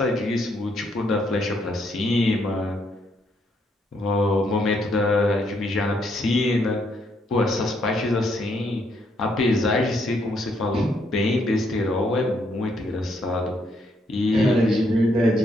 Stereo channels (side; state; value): both; normal; correlation 0.73